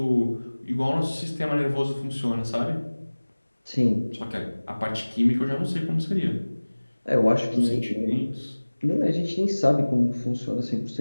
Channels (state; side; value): inverted; both; correlation -1.00